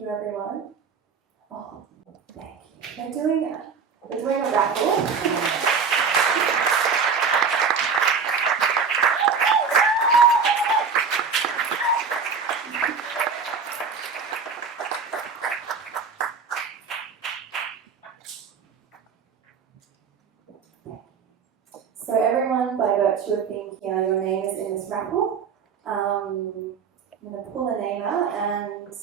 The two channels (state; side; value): quieter; left; 5.7 dB